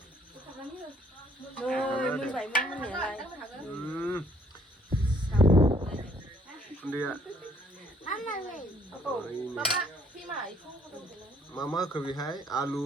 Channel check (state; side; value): normal; both; correlation 0.63